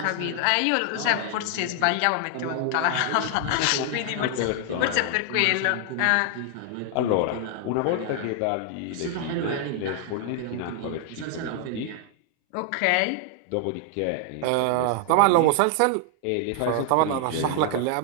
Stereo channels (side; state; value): both; different; correlation 0.00